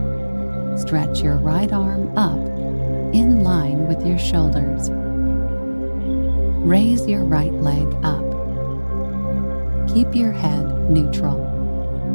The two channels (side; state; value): both; inverted; correlation -1.00